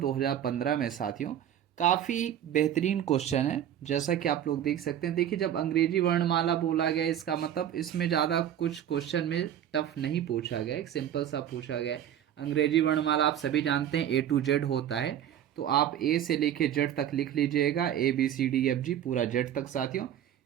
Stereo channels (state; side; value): quieter; left; 10.5 dB